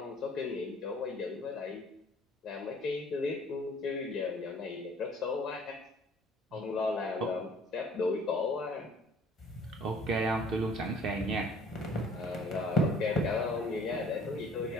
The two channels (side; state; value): both; normal; correlation 0.54